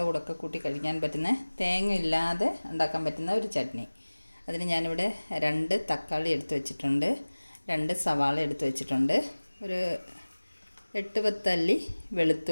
കൂടെയൊക്കെ കൂട്ടി കഴിക്കാൻ പറ്റുന്ന, തേങ്ങ ഇല്ലാതെ ഉണ്ടാക്കാൻ പറ്റുന്ന ഒരു ചട്നി. അതിന് ഞാനിവിടെ 2 തക്കാളി എടുത്ത് വെച്ചിട്ടുണ്ട്, 2 സവാള എടുത്ത് വെച്ചിട്ടുണ്ട്, ഒരു 8-10 അല്ലി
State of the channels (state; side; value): inverted; both; correlation -1.00